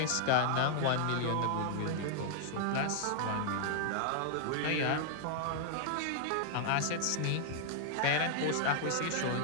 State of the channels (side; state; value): both; different; correlation -0.01